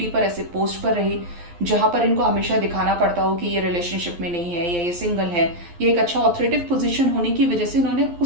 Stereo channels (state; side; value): late; left; 11 ms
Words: पर, ऐसे पोस्ट पर रहे जहां पर इनको हमेशा दिखाना पड़ता हो कि ये रिलेशनशिप में नहीं है या ये सिंगल है, ये एक अच्छा ऑथोरिटेटिव पोजीशन होने की वजह से इन्होंने